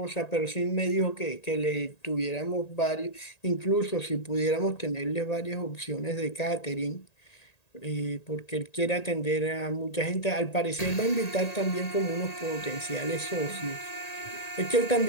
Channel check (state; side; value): late; right; 1.8 ms